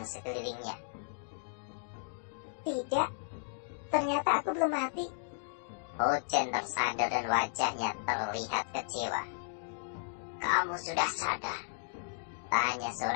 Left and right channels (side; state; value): right; silent; digital silence